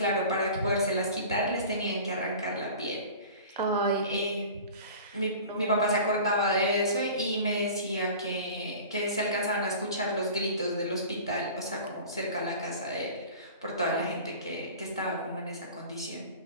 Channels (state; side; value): inverted; both; correlation -0.40